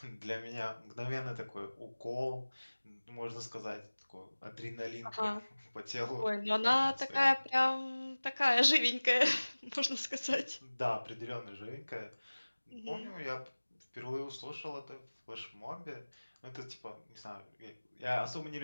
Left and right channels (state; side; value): inverted; both; correlation -1.00